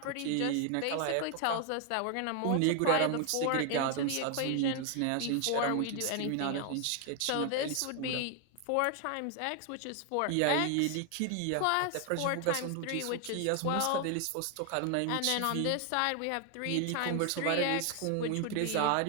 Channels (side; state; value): both; different; correlation 0.00